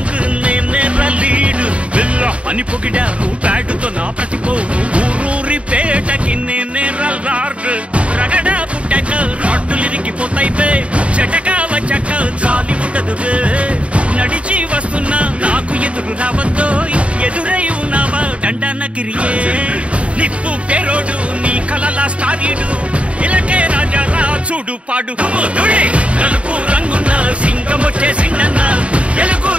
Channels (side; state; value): left; late; 0.062 ms